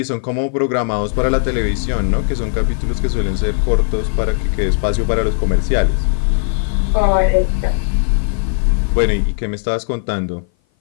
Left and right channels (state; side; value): silent; right; 57 dB below the other